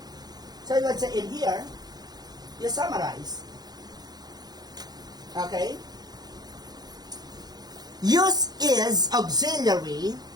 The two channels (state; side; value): late; left; 0.19 ms